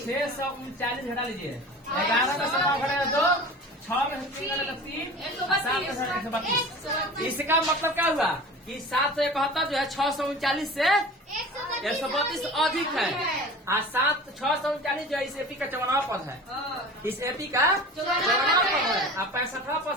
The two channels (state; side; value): normal; both; correlation 0.38